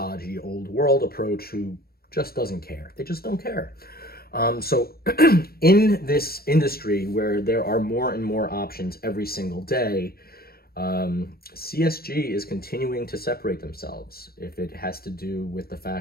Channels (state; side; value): late; right; 0.44 ms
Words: old world approach who just doesn't care. They just don't care. So in this industry where there are more and more options every single day, CSG is continuing to separate themselves. If it has to do with the